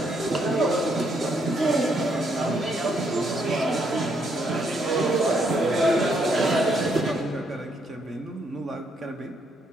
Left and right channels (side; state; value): both; normal; correlation 0.73